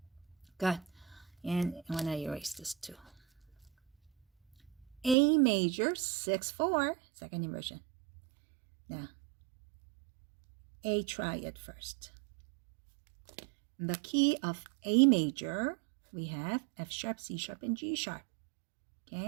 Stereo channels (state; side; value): drops out; left; at 5.2 s